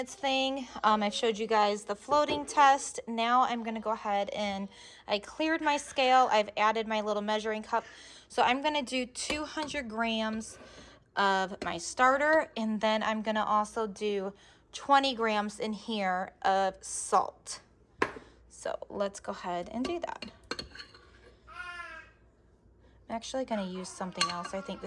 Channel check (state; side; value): identical; both; correlation 1.00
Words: thing, I've showed you guys the floating test. Now I'm gonna go ahead and I cleared my scale. I've added my little measuring cup. So I'm gonna do 200 grams of my starter, and then I'm gonna also do 20 grams in here of salt. So let's go ahead and do that. I'm actually gonna use something else, I think, to